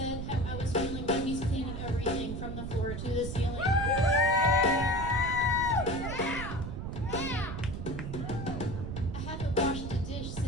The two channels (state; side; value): noise; right; rumble, 6 dB below the sound